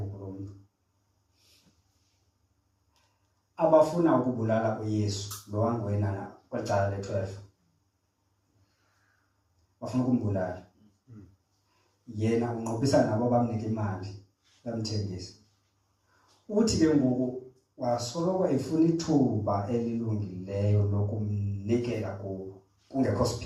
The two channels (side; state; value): both; identical; correlation 1.00